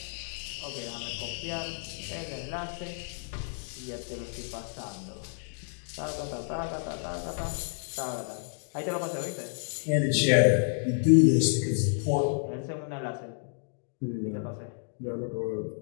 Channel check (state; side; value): silent; right; digital silence